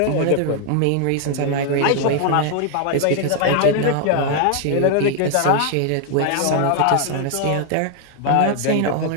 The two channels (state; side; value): different; both; correlation 0.00